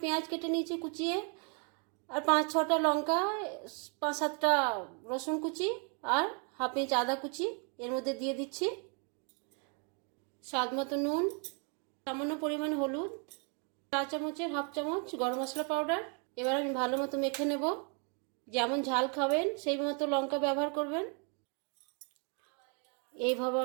পেঁয়াজ কেটে নিয়েছি কুচিয়ে, আর 5-6টা লঙ্কা, 5-7টা রসুন কুচি, আর হাফ ইঞ্চ আদা কুচি এর মধ্যে দিয়ে দিচ্ছি। স্বাদ মতো নুন, সামান্য পরিমাণ হলুদ, 4 চামচের হাফ চামচ গরম মশলা পাউডার। এবার আমি ভালো মতো মেখে নেব। যেমন ঝাল খাবেন সেই মতো লঙ্কা ব্যবহার করবেন। এইভাবে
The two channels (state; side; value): quieter; left; 38.0 dB